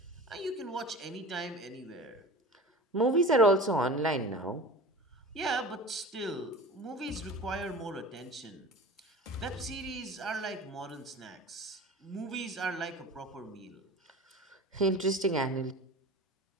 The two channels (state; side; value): normal; both; correlation 0.36